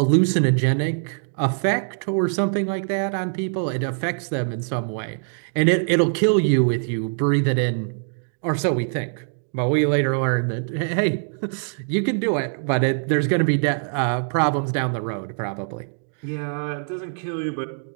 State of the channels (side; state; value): left; silent; digital silence